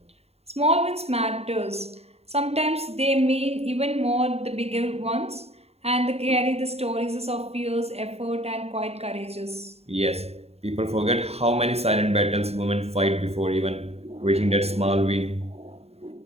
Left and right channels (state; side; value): late; left; 0.30 ms